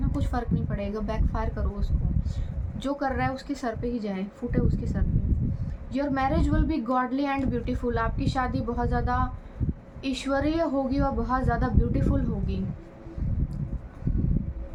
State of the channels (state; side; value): identical; both; correlation 1.00